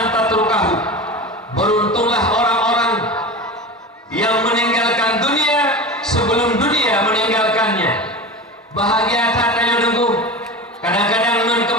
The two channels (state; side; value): normal; both; correlation 0.28